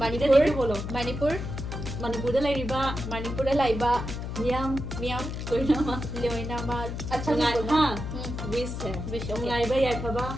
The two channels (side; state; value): left; noise; hum, 5 dB below the sound